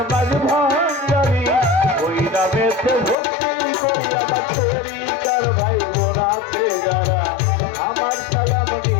মাঝ ভাঙ্গারি ওই নামেতে ভক্তি করি আমার তরিকার ভাই বোন আছে যারা আমার সালাম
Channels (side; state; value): right; drops out; at 3.2 s